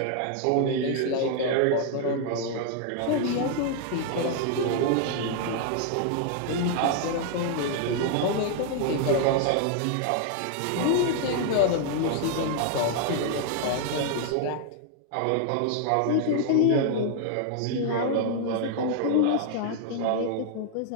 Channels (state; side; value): different; both; correlation 0.00